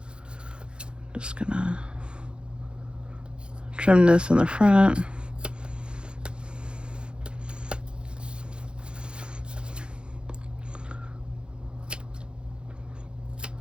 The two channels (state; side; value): late; left; 0.054 ms